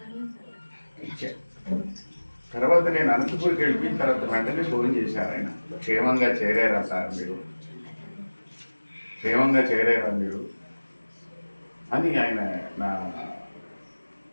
తర్వాత నేను అనంతపూర్కి వెళ్ళిపోయిన తర్వాత వెంటనే ఫోన్ చేశారు ఆయన. క్షేమంగా చేరారా సార్ మీరు, క్షేమంగా చేరారా మీరు అని ఆయన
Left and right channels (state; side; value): inverted; both; correlation -1.00